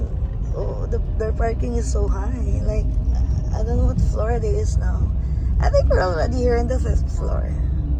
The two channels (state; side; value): identical; both; correlation 1.00